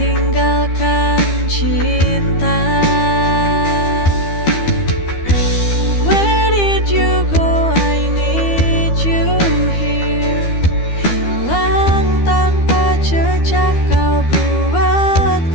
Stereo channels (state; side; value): late; right; 12 ms